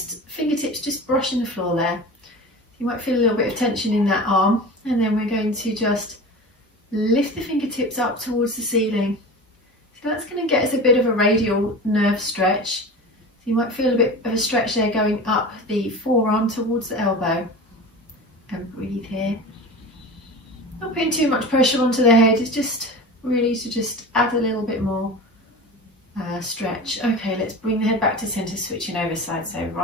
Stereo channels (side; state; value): both; normal; correlation 0.33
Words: fingertips just brushing the floor there. You might feel a little bit of tension in that arm, and then we're going to just lift the fingertips up towards the ceiling. So that's going to get us a bit of a radial nerve stretch. So you might feel a bit of a stretch there going up the forearm towards the elbow. And breathe here. Not putting too much pressure onto the head, it's just really to just add a little bit more stretch. Okay, let's bring the head back to centre, switching over sides. So